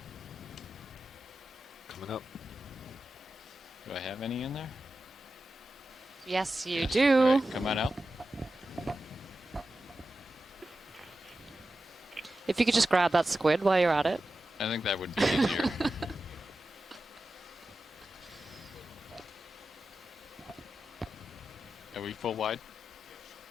Coming up. Do I have any in there? Yes, you do. Right, come on out. If you could just grab that squid while you're at it. I think that would be easier. Are we full wide?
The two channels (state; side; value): normal; both; correlation 0.92